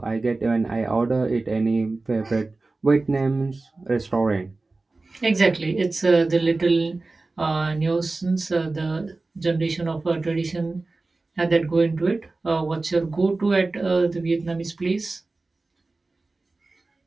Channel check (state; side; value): quieter; left; 3.4 dB